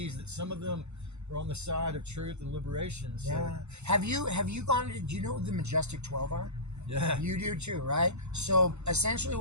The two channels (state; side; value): late; left; 0.82 ms